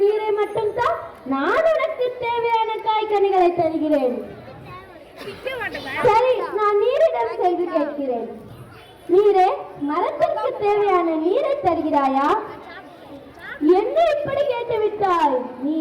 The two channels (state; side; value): identical; both; correlation 1.00